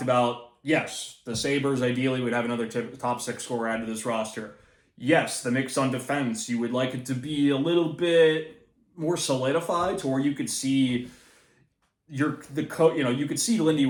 about, yes, the Sabres ideally would have another top 6 scorer added to this roster. Yes, the mix on defense, you would like it to be a little bit more solidified to where you could see you could see Lindy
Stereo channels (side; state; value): both; identical; correlation 1.00